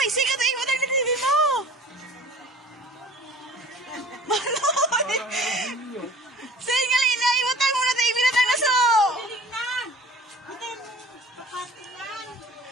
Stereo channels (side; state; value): both; normal; correlation 0.47